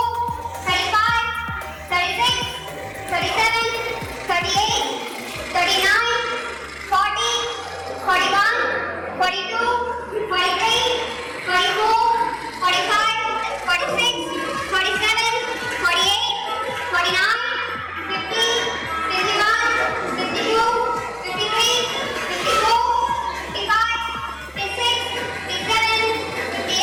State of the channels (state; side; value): identical; both; correlation 1.00